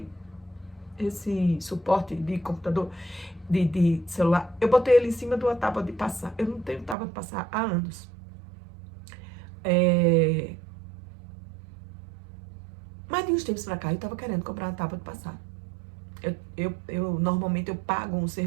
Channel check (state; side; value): drops out; left; at 7.0 s